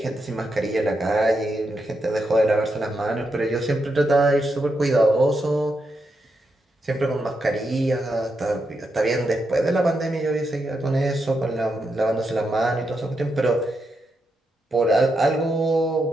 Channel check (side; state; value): both; normal; correlation 0.84